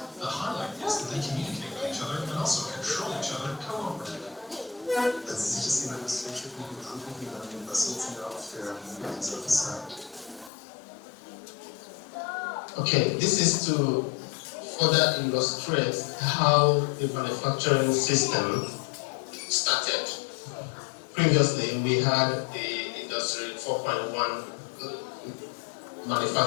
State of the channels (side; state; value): right; drops out; at 10.5 s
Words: The highlight is that they communicate with each other and also control each other cooperatively. Okay, this is to further illustrate how the manufacturing system started. Previously, we had the Industry 4.1